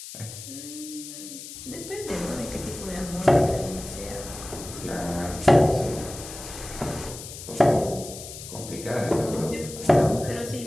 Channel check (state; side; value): noise; left; hiss, 12 dB below the sound